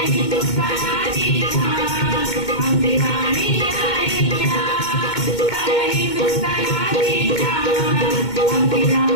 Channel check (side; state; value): right; late; 2.2 ms